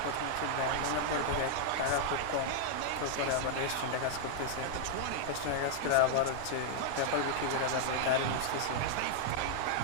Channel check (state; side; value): different; both; correlation -0.01